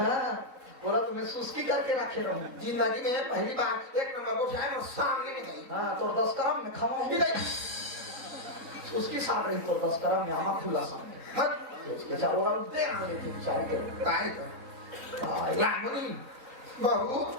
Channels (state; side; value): late; left; 3.9 ms